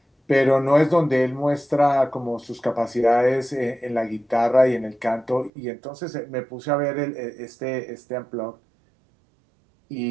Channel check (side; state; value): left; drops out; at 5.5 s